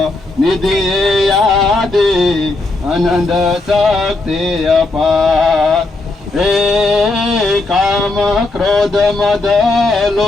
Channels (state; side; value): quieter; right; 3.2 dB